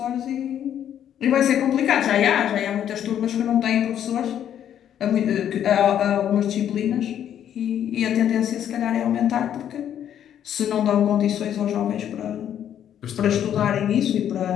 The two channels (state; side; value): quieter; right; 10.0 dB